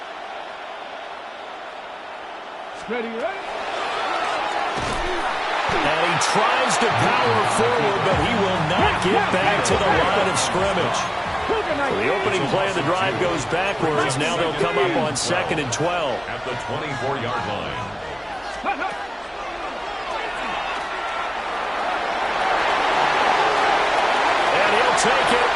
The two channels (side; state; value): both; identical; correlation 1.00